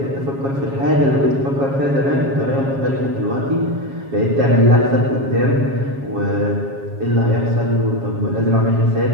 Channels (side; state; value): left; late; 7.3 ms